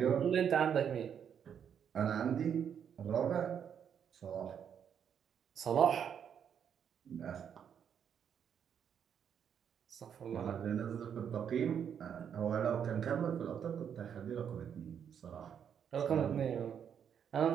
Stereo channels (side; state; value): left; quieter; 8.2 dB